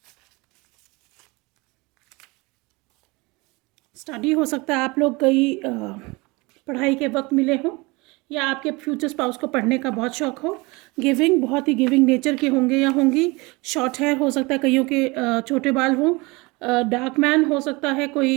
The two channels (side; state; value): left; quieter; 25.0 dB